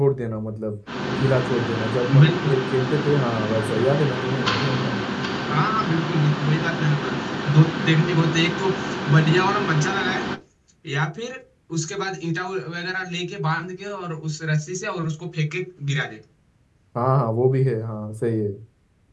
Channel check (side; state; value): both; identical; correlation 1.00